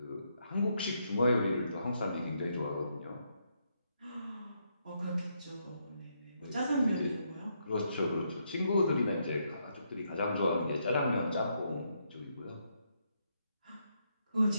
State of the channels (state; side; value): inverted; both; correlation -0.77